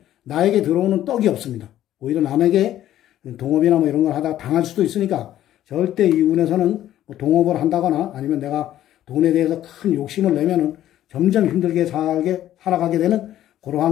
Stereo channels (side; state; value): right; quieter; 12.6 dB